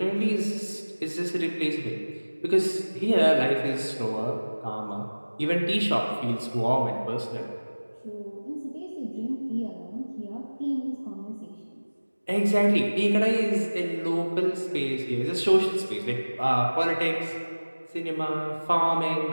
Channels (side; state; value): both; inverted; correlation -1.00